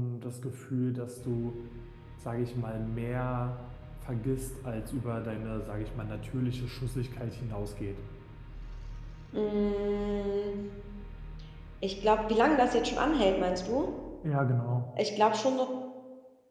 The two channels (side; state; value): both; identical; correlation 1.00